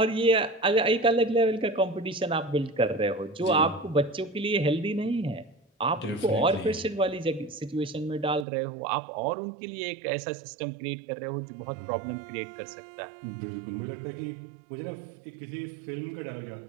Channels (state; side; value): drops out; left; at 8.5 s